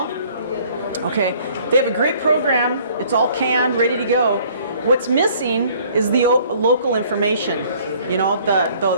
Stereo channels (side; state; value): both; inverted; correlation -0.57